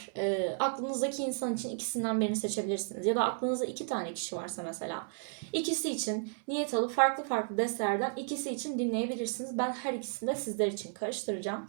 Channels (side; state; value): left; silent; 56 dB below the other